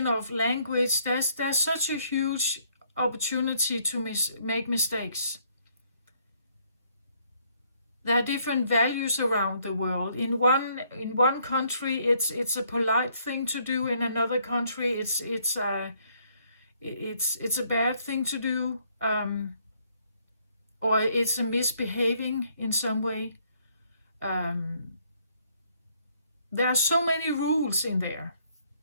of language. There's such a huge opportunity to make mistakes. There are different values around the world. In one country, it's a polite thing to do. In another country, it's a bad thing to do, or it's a misbehaving in some way. There are so many rules in there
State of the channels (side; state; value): both; inverted; correlation -0.67